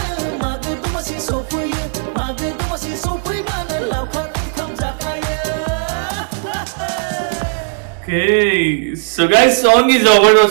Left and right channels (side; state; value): left; silent; digital silence